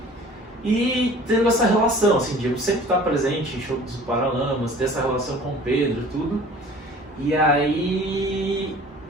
E tendo essa relação, assim, de eu sempre estar presente em shows dos Paralamas, ter essa relação com o Pedro, tudo. E aí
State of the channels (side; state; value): both; normal; correlation 0.47